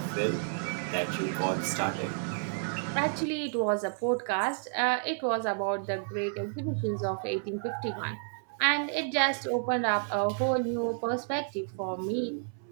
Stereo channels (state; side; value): silent; left; 57 dB below the other